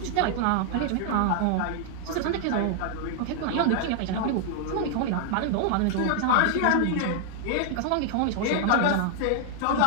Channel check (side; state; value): both; different; correlation -0.01